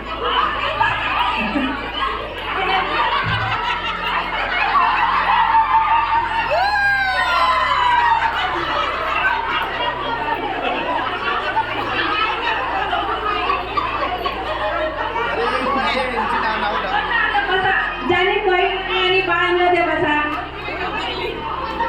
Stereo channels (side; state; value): both; identical; correlation 1.00